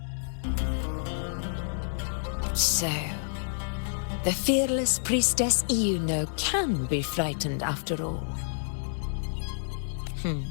So, the fearless priestess Iuno can be frightened after all.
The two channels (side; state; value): right; silent; digital silence